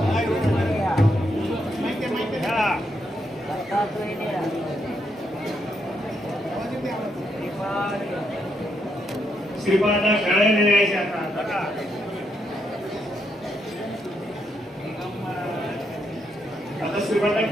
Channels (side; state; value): both; normal; correlation 0.78